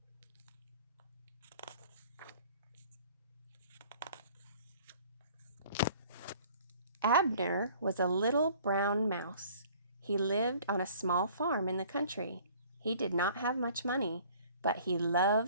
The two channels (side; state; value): both; inverted; correlation -0.52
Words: Abner was a little brown mouse. He lived on a small farm in the country. He did not have much money, but he